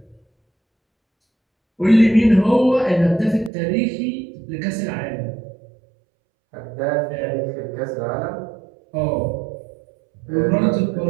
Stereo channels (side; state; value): left; drops out; at 3.5 s